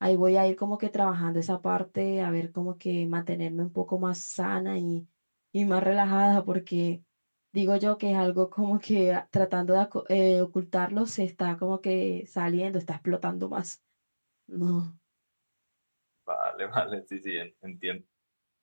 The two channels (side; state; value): both; inverted; correlation -1.00